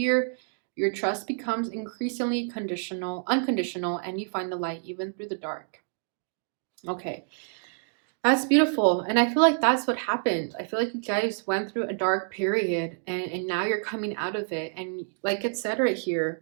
your trust becomes increasingly unconditional, and you find the light even through the dark. Okay, that's beautiful. And I feel like that's what happened. I feel like you guys went through a dark period and now you're coming out of it. And like it said right here,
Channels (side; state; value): left; silent; digital silence